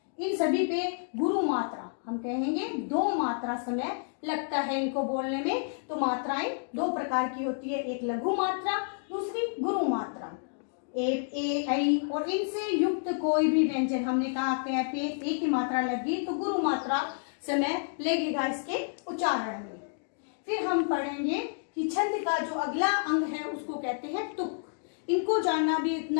इन सभी पे गुरु मात्रा हम कहेंगे दो मात्रा समय लगता है इनको बोलने में। तो मात्राएं दो प्रकार की होती है, एक लघु मात्रा, दूसरी गुरु मात्रा। ए, ऐ और इनसे युक्त कोई भी व्यंजन, हमने कहा कै पे एक ही मात्रा लगी तो गुरु मात्रा समय लगेगा इसके उच्चारण में। फिर हम पढ़ेंगे कि छंद का जो अगला अंग है उसको कहते हैं तुक। इनको जानना भी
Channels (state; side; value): silent; right; digital silence